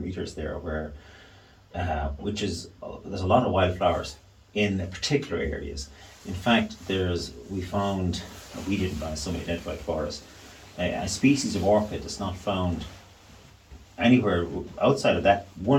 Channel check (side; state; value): both; identical; correlation 1.00